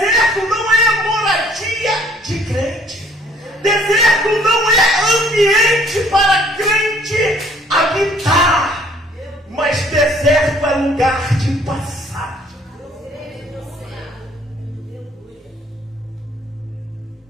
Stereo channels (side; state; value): both; normal; correlation 0.60